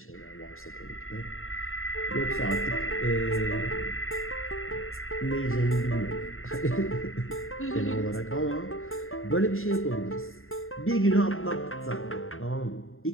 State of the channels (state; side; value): late; right; 0.61 ms